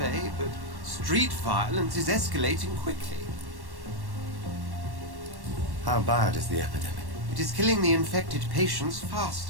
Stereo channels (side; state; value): left; late; 1.1 ms